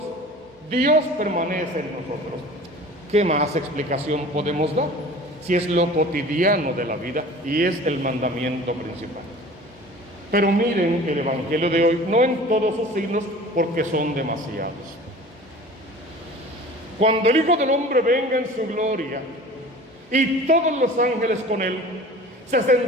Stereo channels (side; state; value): both; normal; correlation 0.42